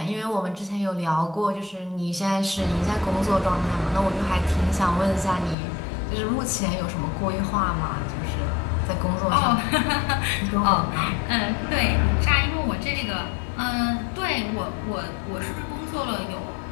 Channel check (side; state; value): right; drops out; at 5.6 s